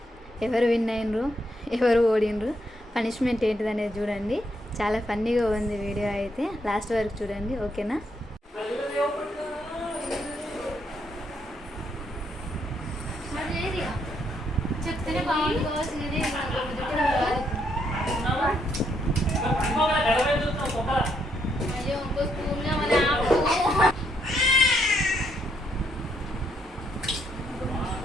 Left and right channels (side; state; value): both; normal; correlation 0.75